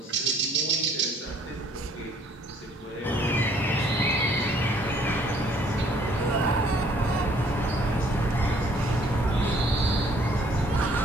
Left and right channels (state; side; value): normal; both; correlation 0.60